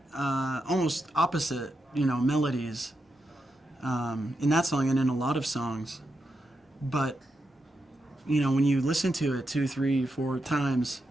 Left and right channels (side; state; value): both; normal; correlation 0.85